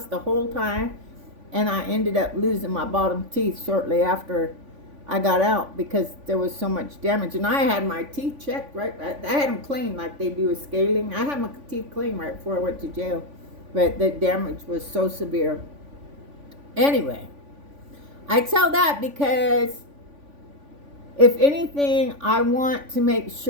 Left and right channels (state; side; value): late; left; 3.5 ms